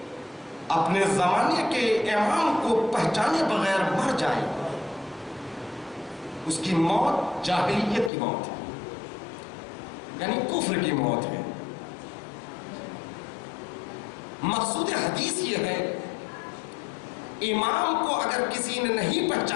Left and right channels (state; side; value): drops out; right; at 8.1 s